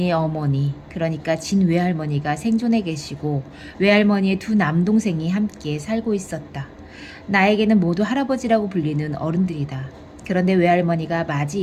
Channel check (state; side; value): identical; both; correlation 1.00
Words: 어머니, 그러니까 진 외할머니가 생존해 계시고 외할머니의 두 남동생이 함께 살고 있었다. 나에게는 모두 할아버지라고 불리는 어른들이다. 그런데 외할머니가